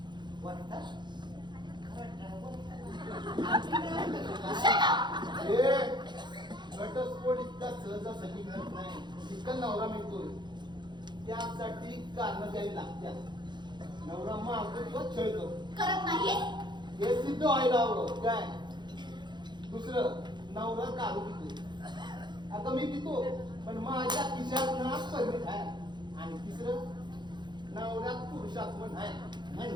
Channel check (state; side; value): late; left; 0.21 ms